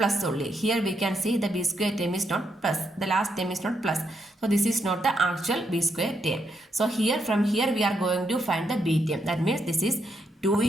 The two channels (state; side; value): normal; both; correlation 0.79